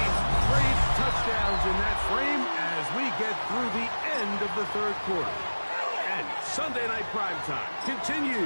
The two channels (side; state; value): both; inverted; correlation -1.00